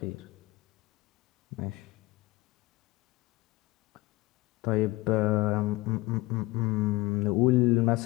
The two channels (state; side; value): quieter; right; 20.2 dB